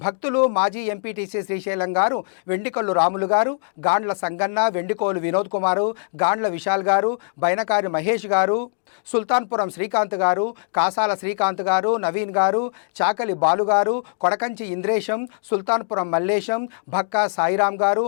భక్తులు మాజీ ఎంపీటీసీ శ్రీశైలం గారు, వెండికొల్లు రాములు గారు, గాండ్ల సంగన్న, వెండికోలు వినోద్ కుమారు, గాండ్ల విశాల్ గారు, బైనకారి మహేష్ గారు, సుల్తాన్పురం శ్రీకాంత్ గారు, కాసాల శ్రీకాంత్ గారు, నవీన్ గారు, చాకలి బాలు గారు, కొడకంచి ఇంద్రేశం, సుల్తాన్పురం మల్లేశం, భక్కా సాయిరాం గారు,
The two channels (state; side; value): silent; right; digital silence